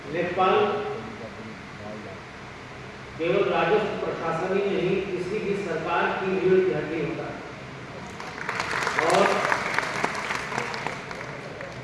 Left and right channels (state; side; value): identical; both; correlation 1.00